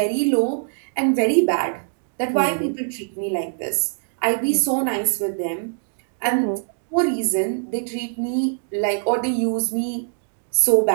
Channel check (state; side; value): silent; left; digital silence